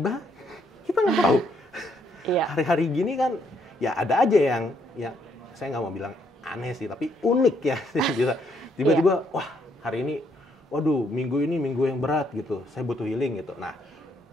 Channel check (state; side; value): normal; both; correlation 0.72